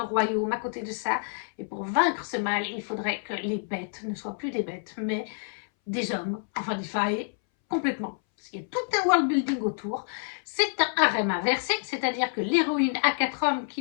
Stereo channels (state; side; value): silent; right; 59 dB below the other